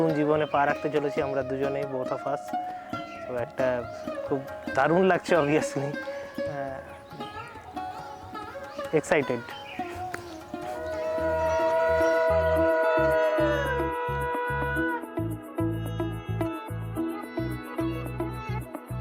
জীবনে পা রাখতে চলেছি আমরা দুজনেই, বোথ অফ আস। তো একটা খুব দারুণ লাগছে, অবভিয়াসলি এক্সাইটেড।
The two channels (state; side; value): identical; both; correlation 1.00